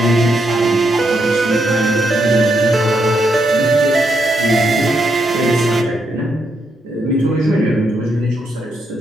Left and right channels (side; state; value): both; normal; correlation 0.79